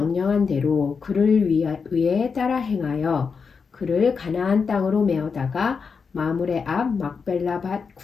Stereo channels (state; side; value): quieter; right; 5.5 dB